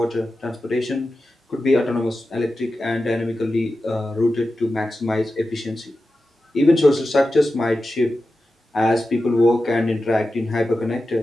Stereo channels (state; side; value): normal; both; correlation 0.92